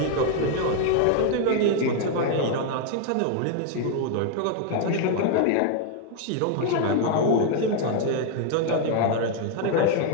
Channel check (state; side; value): different; both; correlation 0.00